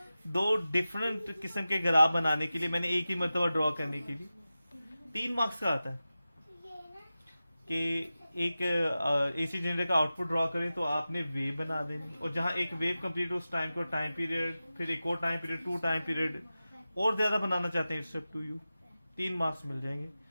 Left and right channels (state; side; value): inverted; both; correlation -0.94